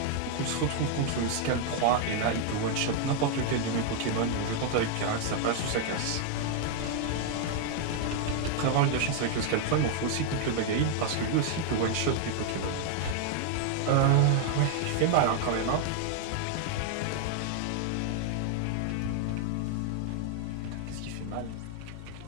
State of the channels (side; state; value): both; different; correlation 0.00